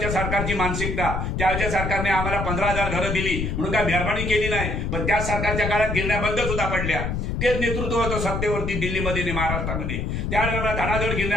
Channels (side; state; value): left; noise; rumble, 2 dB below the sound